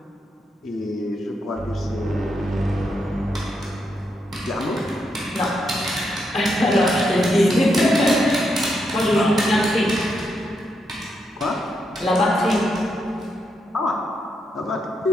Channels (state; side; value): normal; both; correlation 0.81